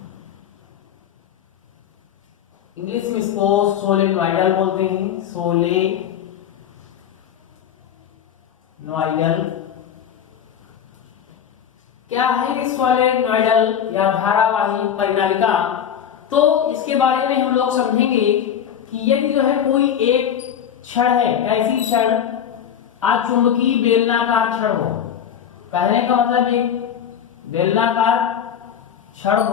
इंग्लिश में इसको सोलेनॉइडल बोलते हैं। सोलेनॉइडल। क्या है सोलेनॉइडल या धारावाही परिनालिका? तो इसके बारे में हम लोग समझेंगे कि यदि जो है कोई एक छड़ है, ऐसी छड़ अचुंबकीय बेलनाकार छड़ हो। कहने का मतलब ये बेलनाकार छड़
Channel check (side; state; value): right; quieter; 8.9 dB